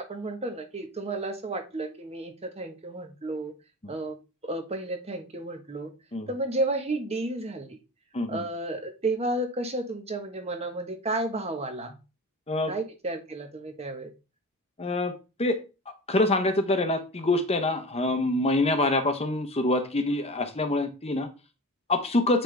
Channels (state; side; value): normal; both; correlation 0.32